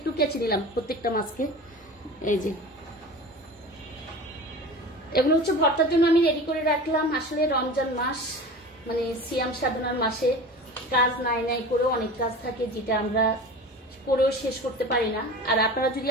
কেচে নিলাম, প্রত্যেকটা মাছকে। এই যে এগুলো হচ্ছে ভর্তার জন্য আমি রেডি করে রাখলাম। আসলে রমজান মাস মানে সিয়াম সাধনার মাসে কাজ নাই করেও অনেক কাজ থাকে, যেটা আমরা করেও শেষ করতে পারি না। আর আপনারা যদি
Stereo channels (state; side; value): normal; both; correlation 0.35